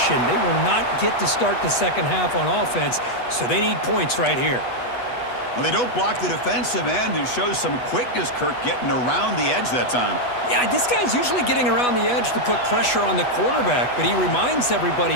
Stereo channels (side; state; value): right; late; 8.2 ms